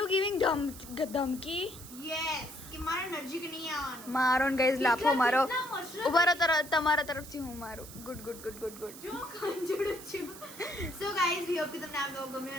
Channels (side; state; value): right; noise; hiss, 15 dB below the sound